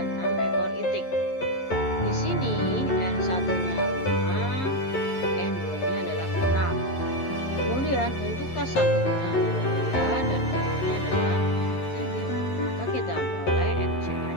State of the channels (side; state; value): right; late; 11 ms